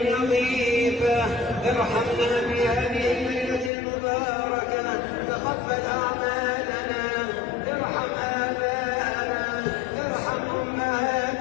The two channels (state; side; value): drops out; right; at 3.7 s